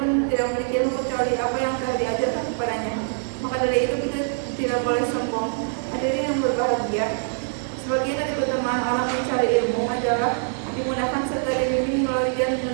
tidak memiliki ilmu kecuali apa yang telah diajarkan kepadanya. Maka dari itu kita tidak boleh sombong. Hadirin yang berbahagia, sebagian dari keutamaan orang mencari ilmu adalah dimudahkan serta dibimbing melalui jalan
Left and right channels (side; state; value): left; silent; 57 dB below the other